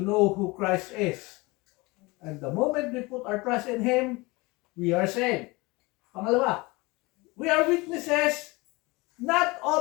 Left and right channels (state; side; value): quieter; right; 24.0 dB